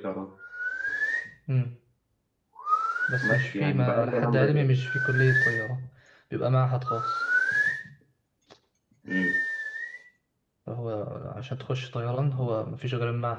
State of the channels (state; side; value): identical; both; correlation 1.00